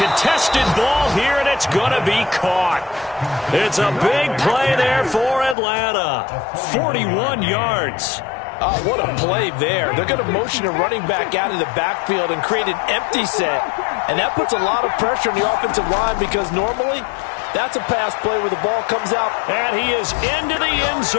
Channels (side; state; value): right; drops out; at 5.6 s